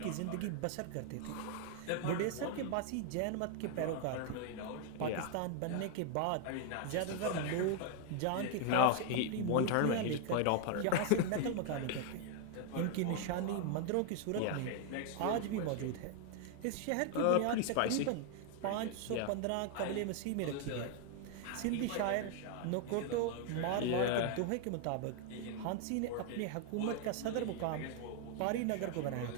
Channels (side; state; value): both; different; correlation 0.00